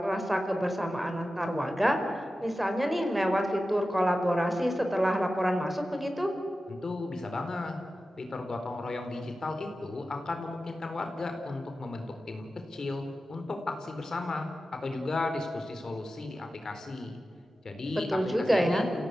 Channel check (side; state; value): both; normal; correlation 0.93